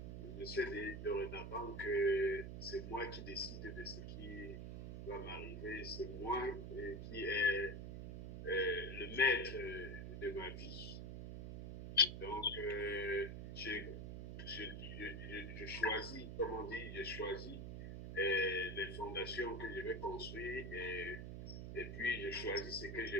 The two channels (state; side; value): noise; right; hum, 7 dB below the sound